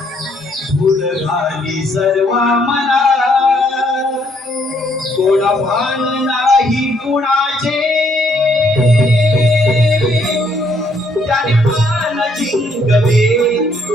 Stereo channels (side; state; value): both; normal; correlation 0.69